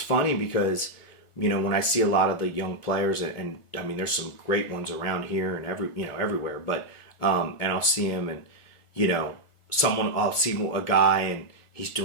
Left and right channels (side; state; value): right; late; 1.4 ms